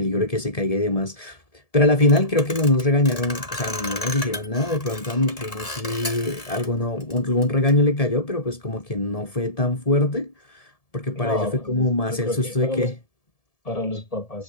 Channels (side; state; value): right; late; 1.7 ms